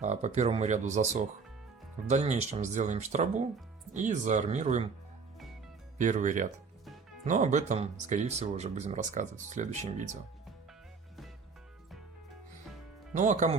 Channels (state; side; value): quieter; left; 5.0 dB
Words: по первому ряду засох. В дальнейшем сделаем штробу и заармируем первый ряд. Но об этом, скорее всего, уже будем рассказывать в следующем видео. Ну а